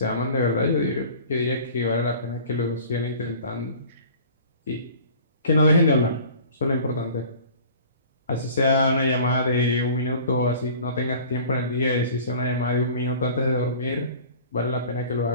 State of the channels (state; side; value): inverted; both; correlation -0.45